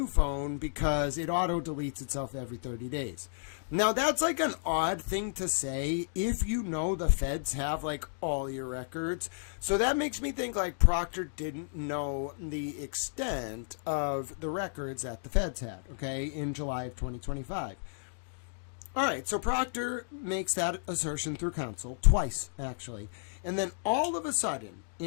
phone because it auto-deletes itself every 30 days. Now, that's like an odd thing to say if you know the feds have like all your records. So that makes me think like Proctor didn't know the extent of the records that the feds had, okay, in July of 2025. All right, so Proctor makes that assertion through counsel twice, actually. And then all of a sudden,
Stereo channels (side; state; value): right; silent; digital silence